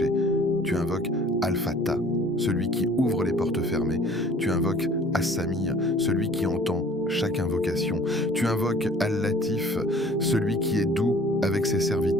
Tu invoques Al-Fattah, celui qui ouvre les portes fermées. Tu invoques As-Sami', celui qui entend chaque invocation. Tu invoques Al-Latif, celui qui est doux avec ses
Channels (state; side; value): normal; both; correlation 0.51